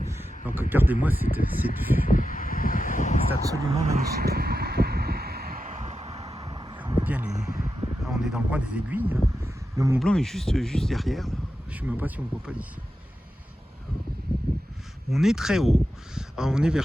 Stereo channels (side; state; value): both; normal; correlation 0.90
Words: Donc regardez-moi cette vue. C'est absolument magnifique. On voit bien là, on est dans le coin des aiguilles. Hein. Le Mont Blanc est juste derrière. Là. Je ne sais même pas si on ne voit pas d'ici. On est très haut. Alors, on est vers